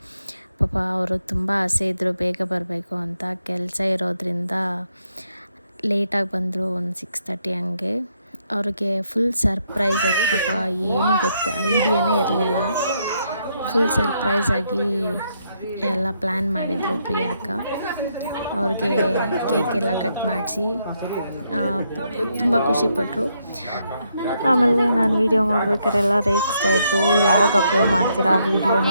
ಪಾಪ ಅವರು ತುಂಬ ಆಸೆ ಇದ್ದರು ಬೇಗ ಬರಬೇಕು ಅಂತ, ಕೆಲಸ ಇರೋದ್ರಿಂದ ಲೇಟಾಗಿ ಬಂದರು, ಒಂದು 6:30 ಹಂಗೆ. ಅವ್ರಿಗೆ ಫುಲ್ ಸರ್ಪ್ರೈಸ್ ಅದು, ಪಾಪ ಏನು ಐಡಿಯಾನೇ ಇರಲಿಲ್ಲ. ಫುಲ್ ಸರ್ಪ್ರೈಸ್ ಆಗಿ ಎಲ್ಲ ಪ್ಲ್ಯಾನ್ ಮಾಡಿದರು ಪ್ರಿಯಾಕ. ಅವ್ರಿಗೆ ಕೇಕ್ ಎಲ್ಲ ಕಟ್ ಮಾಡಿಸಿ ತುಂಬ ಖುಷಿಪಟ್ಟರು. ಆಮೇಲೆ ನಾನು ವೀಡಿಯೋ ಮಾಡ್ಬೇಕಾರೆಲ್ಲ ರೇಗಿಸ್ತಾಯಿದ್ರು, ಯಾವಾಗ ಅಪ್ಲೋಡ್ ಮಾಡ್ತೀರಾ ವೀಡಿಯೋನ,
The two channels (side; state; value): both; inverted; correlation -0.77